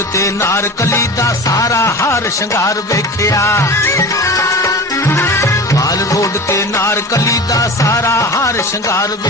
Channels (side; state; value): both; normal; correlation 0.33